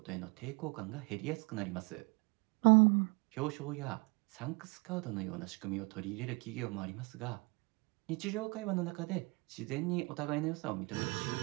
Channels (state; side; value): quieter; left; 28.3 dB